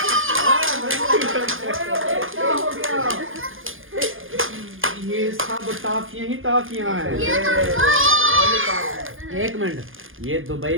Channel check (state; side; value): late; left; 0.59 ms